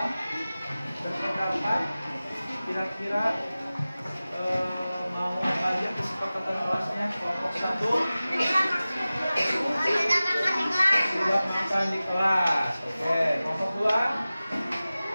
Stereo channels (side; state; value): both; inverted; correlation -0.96